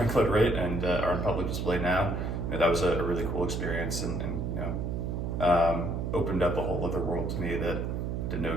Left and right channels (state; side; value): noise; right; hum, 2 dB below the sound